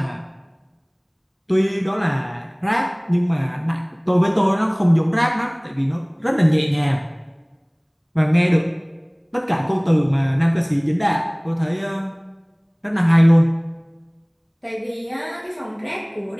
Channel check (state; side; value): identical; both; correlation 1.00